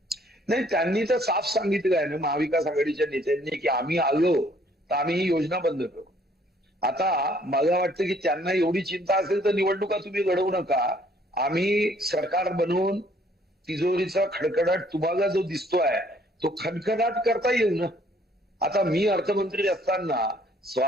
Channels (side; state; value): both; normal; correlation 0.62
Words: नाही, त्यांनी तर साफ सांगितलं आहे ना महाविकास आघाडीच्या नेत्यांनी की आम्ही आलो तर आम्ही ही योजना बंद करू. आता मला वाटतं की त्यांना एवढी चिंता असेल तर निवडणुका तुम्ही लढवू नका. आम्ही सरकार बनवून तिजोरीचा खडखडाट तुम्हाला जो दिसतोय तो खडखडाट करता येईल ना. आता मी अर्थमंत्री असताना